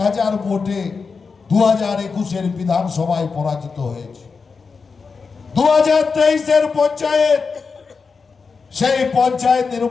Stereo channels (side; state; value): right; quieter; 5.0 dB